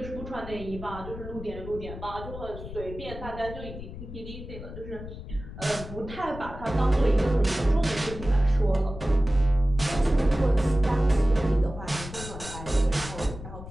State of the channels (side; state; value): left; noise; rumble, 11 dB below the sound